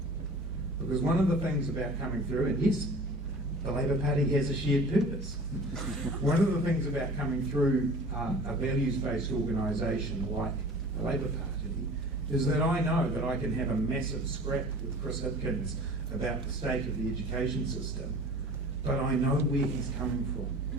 Because one of the things about coming through, and yes, the Labour Party has a shared purpose. One of the things about coming through a values-based organisation like the Labour Party is that I know that I can have a massive scrap with Chris Hipkins about the state of the education system, but I know where he's coming from,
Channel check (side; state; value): both; normal; correlation 0.42